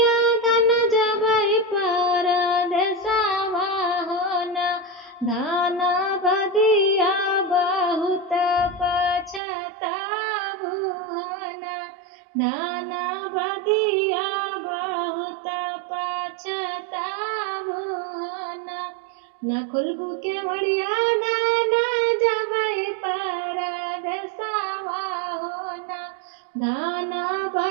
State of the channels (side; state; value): left; drops out; at 9.4 s